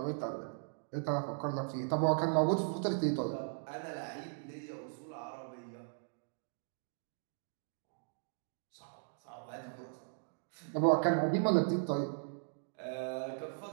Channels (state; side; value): silent; left; digital silence